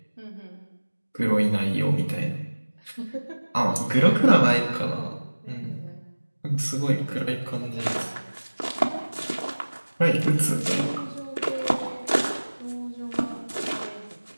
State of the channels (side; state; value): both; inverted; correlation -1.00